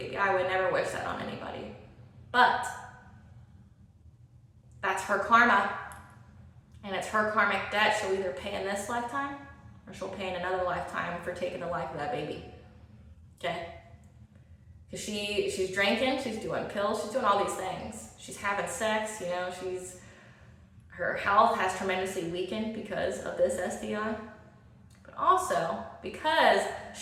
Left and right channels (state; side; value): identical; both; correlation 1.00